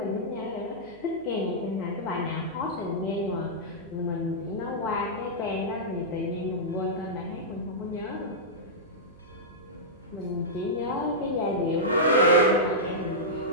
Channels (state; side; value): noise; right; hum, 25 dB below the sound